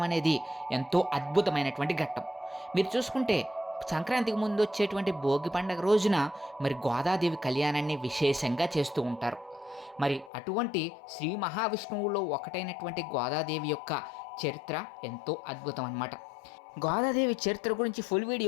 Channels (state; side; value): drops out; right; at 10.3 s